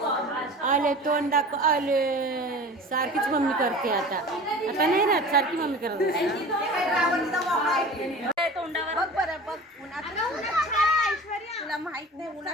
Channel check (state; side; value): normal; both; correlation 0.38